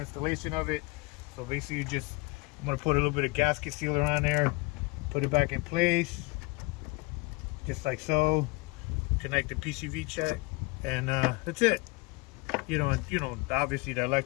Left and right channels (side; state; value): right; quieter; 25.2 dB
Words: of it. So basically, I'm gonna put a little bit of gasket sealer on there, put it back in place, just like so. Connect the PCV check, and that's it. You know, obviously the